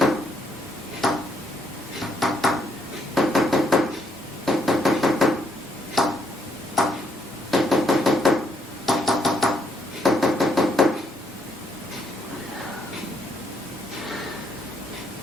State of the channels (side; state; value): both; normal; correlation 0.72